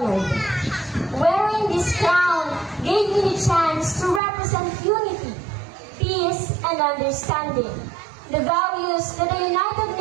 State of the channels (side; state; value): left; drops out; at 4.2 s